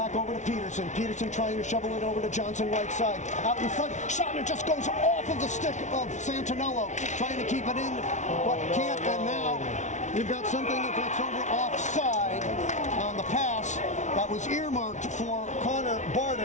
over to Peterson. Peterson trying to shovel it over to Johnson right side. Out in front, shot, and it just goes off of the stick of Santinello. Trying to keep it in, but can't. And now you've got something that's over offside on the pass that was earmarked for Connor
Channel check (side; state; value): right; late; 0.35 ms